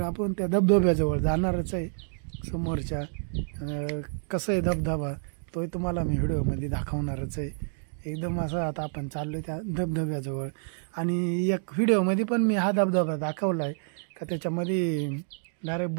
आपण त्या धबधब्याजवळ जाणारच आहे. समोरच्या कसं आहे धबधबा तोही तुम्हाला मी व्हिडिओमध्ये दाखवणारच आहे. एकदम असं आता आपण चाललोय त्या धबधब्याजवळ. आणि एक व्हिडिओमध्ये पण मी हा धबधबा दाखवला आहे का त्याच्यामध्ये डायरेक्ट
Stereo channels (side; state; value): left; silent; 56 dB below the other